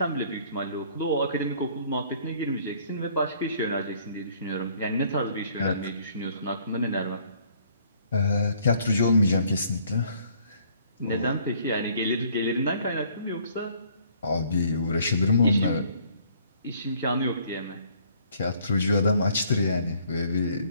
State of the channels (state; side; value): inverted; both; correlation -0.61